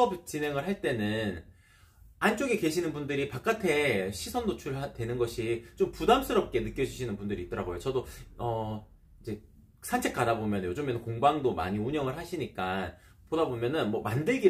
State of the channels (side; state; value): both; identical; correlation 1.00